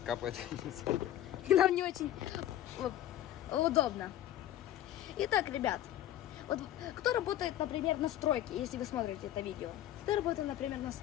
капает. И нам не очень удобно. Итак, ребят, вот кто работает, например, на стройке, если вы смотрите это видео? Кто работает, например, на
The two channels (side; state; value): right; quieter; 12.7 dB